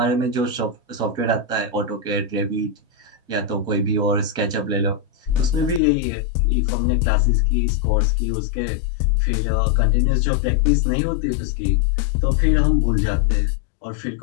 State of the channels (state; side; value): drops out; right; at 5.8 s